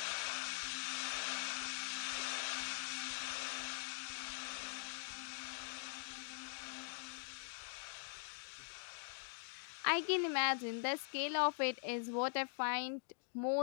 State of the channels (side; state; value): right; silent; digital silence